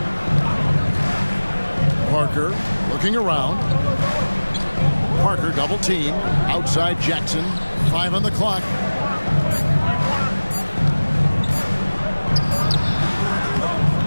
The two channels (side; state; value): both; inverted; correlation -1.00